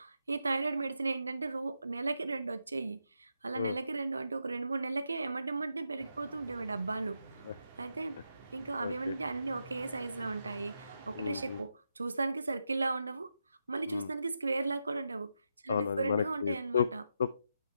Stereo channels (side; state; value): both; inverted; correlation -0.84